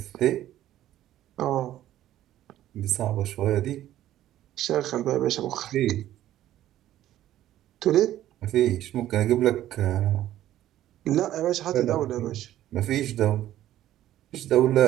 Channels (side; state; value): left; quieter; 13.1 dB